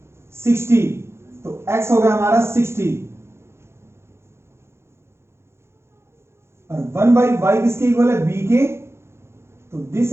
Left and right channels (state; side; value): late; left; 0.13 ms